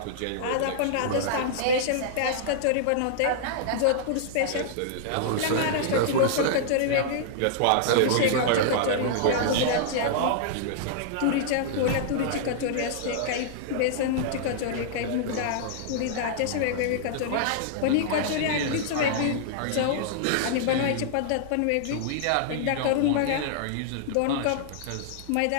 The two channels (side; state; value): both; different; correlation -0.01